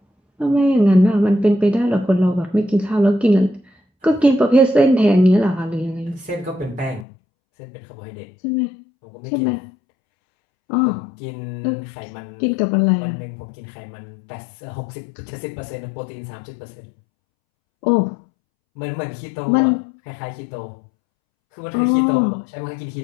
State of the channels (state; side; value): drops out; right; at 7.1 s